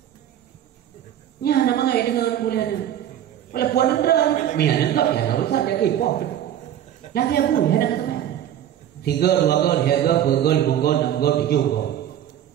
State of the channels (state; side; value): quieter; left; 10.9 dB